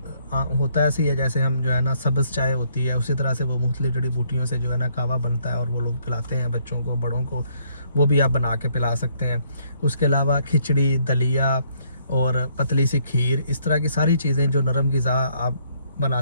होता ऐसे ही है जैसे हम जो है ना सब्ज़ चाय होती है, उसी तरह से वो मुख्तलिफ़ जड़ी बूटियों से जो है ना कावा बनता है और वो लोग पिलाते हैं बच्चों को, बड़ों को। वो भी आप बना के पिला सकते हैं। उसके अलावा खिचड़ी, दलिया और पतली सी खीर, इस तरह की सारी चीज़ें जो नरम ग़िज़ा आप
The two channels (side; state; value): both; inverted; correlation -0.68